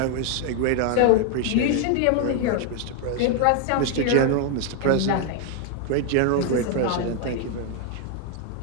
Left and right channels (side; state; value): both; different; correlation 0.00